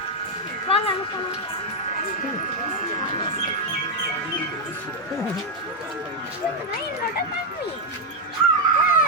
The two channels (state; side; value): normal; both; correlation 0.01